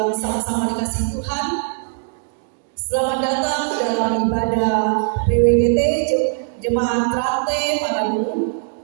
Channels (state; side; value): silent; left; 66 dB below the other